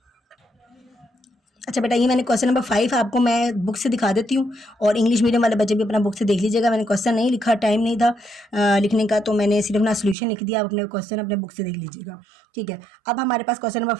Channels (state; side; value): drops out; left; at 10.2 s